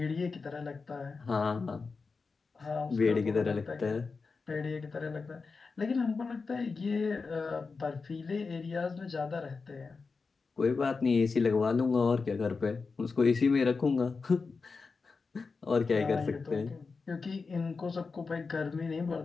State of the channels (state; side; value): quieter; right; 4.5 dB